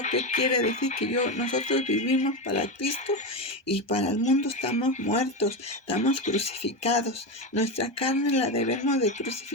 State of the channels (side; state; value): right; late; 1.2 ms